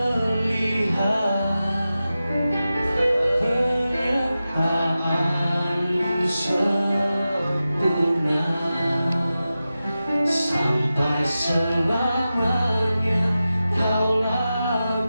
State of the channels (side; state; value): both; inverted; correlation -0.93